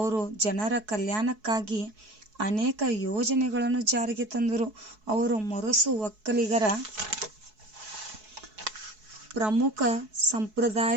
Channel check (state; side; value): late; left; 4.7 ms